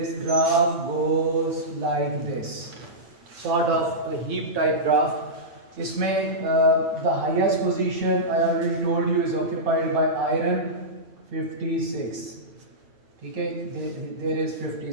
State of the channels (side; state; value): left; late; 9.1 ms